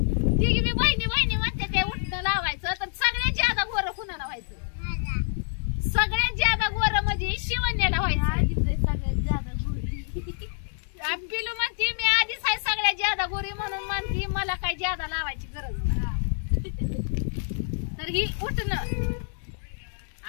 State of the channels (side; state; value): right; silent; digital silence